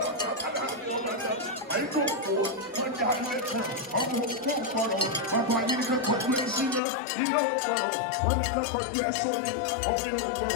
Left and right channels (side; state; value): right; drops out; at 6.8 s